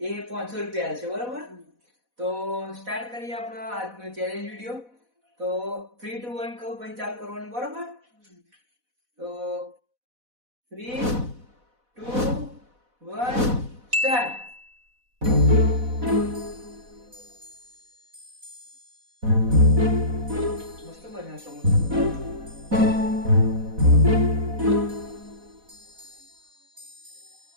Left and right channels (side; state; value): left; late; 4.1 ms